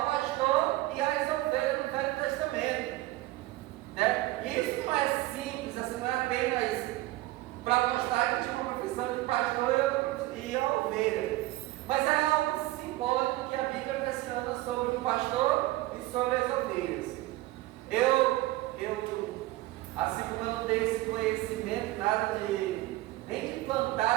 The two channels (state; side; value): quieter; left; 17.8 dB